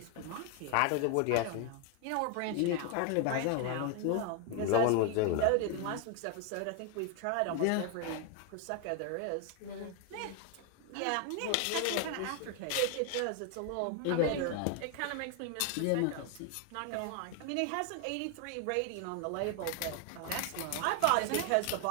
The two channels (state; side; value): different; both; correlation 0.01